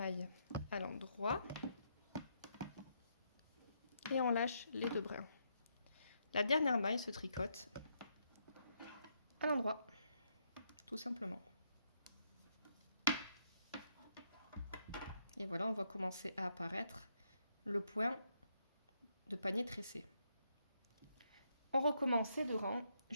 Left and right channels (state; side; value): inverted; both; correlation -0.76